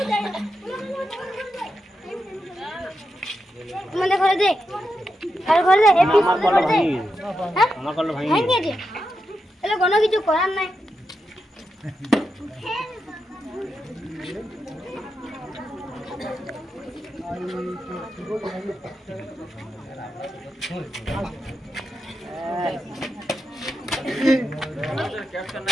যায় মানে করে দে আর করে দে এপিসোড করে দে হ্যাঁ আমার কল ভাই ভেঙে দে তাহলে কোনো কিছু করার নাই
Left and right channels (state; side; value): normal; both; correlation 0.87